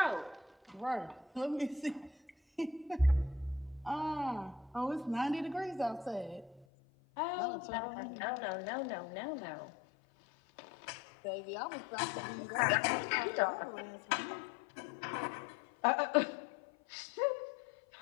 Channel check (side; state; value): right; drops out; at 6.7 s